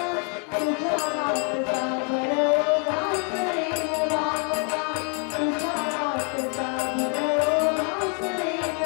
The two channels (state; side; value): quieter; right; 37.3 dB